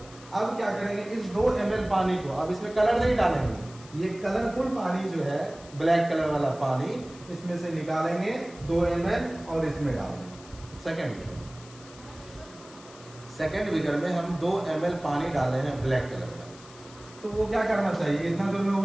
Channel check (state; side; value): noise; left; hiss, 21 dB below the sound